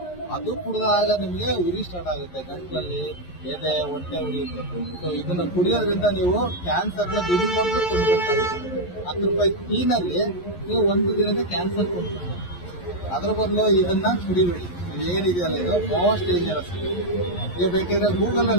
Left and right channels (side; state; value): right; late; 11 ms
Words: ಅದು ಕುಡಿದಾಗ ನಿಮಗೆ ಉರಿ ಸ್ಟಾರ್ಟ್ ಆಗುತ್ತೆ, ಗಂಟ್ಲಲ್ಲಿ ಎದೆ, ಹೊಟ್ಟೆ ಉರಿಯುತ್ತೆ. ಸೊ ಇದನ್ನ ಕುಡಿಯೋದ್ರಿಂದ ನೀವು ಕ್ಯಾನ್ಸರ್ನ ದುಡ್ಡು ಕೊಟ್ಟು ಕೊಡ್ಬೇಕಾಗುತ್ತೆ. 10 ರೂಪಾಯಿ ಟೀನಲ್ಲಿ ನೀವು ಒಂದು ದಿನದ ಕ್ಯಾನ್ಸರ್ ಕೊಡ್ಬೇಕು. ಅದ್ರ ಬದಲು ಇದನ್ನ ಕುಡಿಬೇಡಿ. ಏನಿದೆಯಲ್ಲ ಇದು ಮೋಸ್ಟ್ ಡೇಂಜರಸ್. ನೀವು ಬೇಕಿದ್ರೆ ಗೂಗಲ್